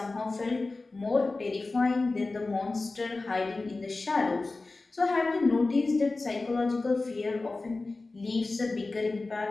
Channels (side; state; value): right; quieter; 3.4 dB